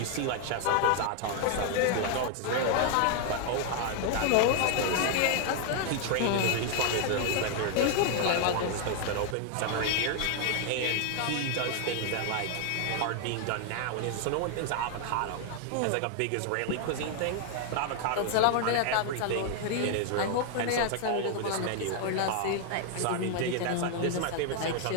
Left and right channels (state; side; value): different; both; correlation 0.00